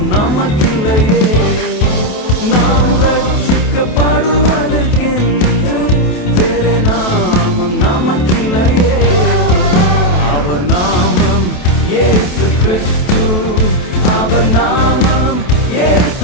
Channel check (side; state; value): right; late; 28 ms